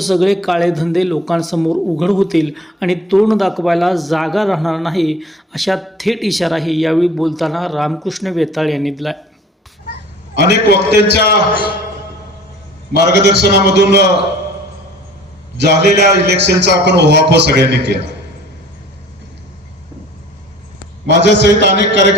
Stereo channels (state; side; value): normal; both; correlation 0.47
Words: काळे धंदे लोकांसमोर उघड होतील आणि तोंड दाखवायला जागा राहणार नाही, अशा थेट इशाराही यावेळी बोलताना रामकृष्ण वेताळ यांनी दिला। अनेक वक्त्यांच्या मार्गदर्शनामधून झालेल्या इलेक्शनचा आपण ओहापोह सगळ्यांनी केला। माझ्या सहित अनेक